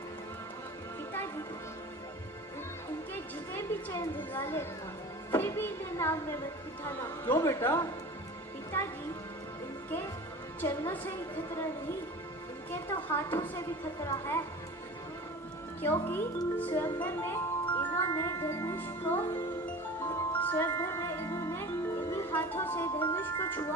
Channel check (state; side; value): normal; both; correlation 0.37